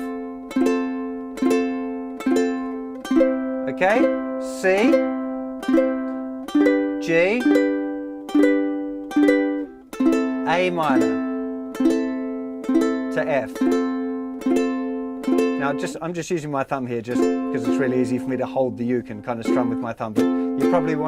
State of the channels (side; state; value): both; identical; correlation 1.00